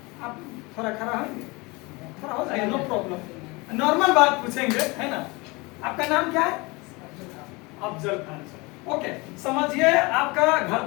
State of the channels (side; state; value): right; quieter; 25.3 dB